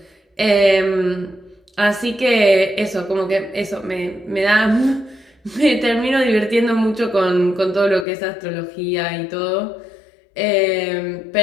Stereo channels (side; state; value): right; drops out; at 8.1 s